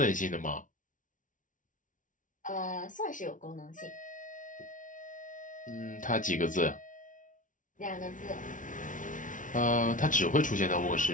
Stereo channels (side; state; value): right; late; 0.38 ms